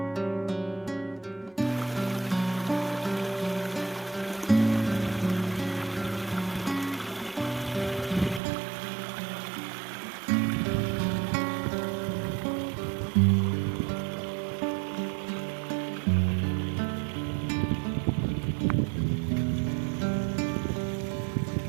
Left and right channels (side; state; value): left; drops out; at 8.4 s